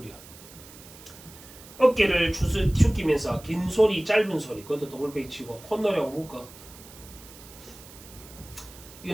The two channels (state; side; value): noise; right; hiss, 19 dB below the sound